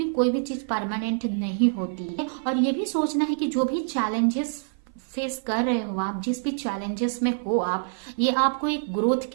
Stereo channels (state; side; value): silent; left; 55 dB below the other